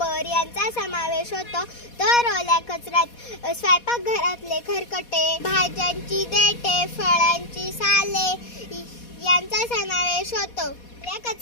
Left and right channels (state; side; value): late; right; 4.2 ms